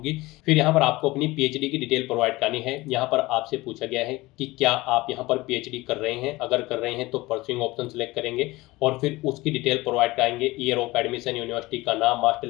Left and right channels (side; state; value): right; quieter; 20.4 dB